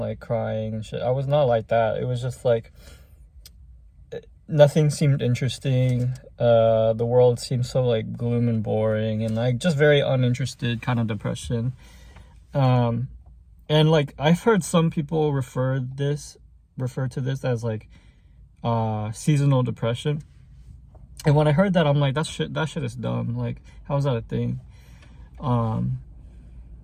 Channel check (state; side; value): identical; both; correlation 1.00